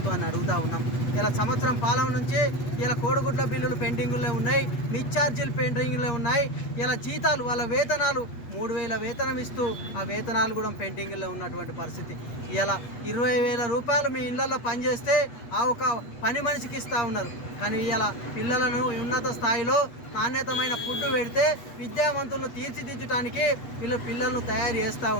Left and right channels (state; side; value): late; right; 8.3 ms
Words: అడుగుతూ ఉన్నాం. ఇలా సంవత్సరం పాలన నుంచి ఇలా కోడిగుడ్ల బిల్లులు పెండింగుల్లో ఉన్నాయి, మిడ్ ఛార్జీలు పెండింగుల్లో ఉన్నాయి. ఇలా జీతాలు, వాళ్ళ వేతనాలు 3,000 వేతనం ఇస్తూ ఆ వేతనాలు కూడా పెండింగ్లో ఉన్నటువంటి పరిస్థితి. ఇలా 20,000 రూపాయలు మీ ఇళ్లలో పనిచేస్తే ఆ ఒక పని మనిషికి ఇస్తూ ఉన్నారు. కానీ ఇలా పిల్లలను ఉన్నత స్థాయిలో నాణ్యతమైన ఫుడ్ పెడితే విద్యావంతులను తీర్చిదిద్దడానికి పిల్లలను తయారు చేస్తూ